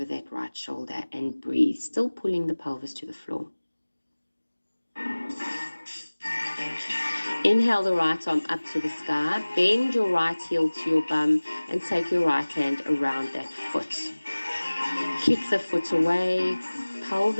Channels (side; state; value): both; inverted; correlation -1.00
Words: that right shoulder and breathe. Still pulling the pelvis to the floor. Inhale the right arm up to the sky. Bend your right heel to your bum and take your right hand around that foot. Kick the foot away.